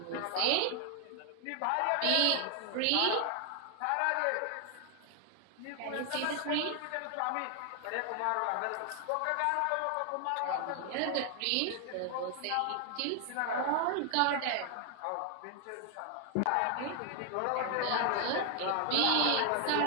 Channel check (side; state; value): both; different; correlation 0.00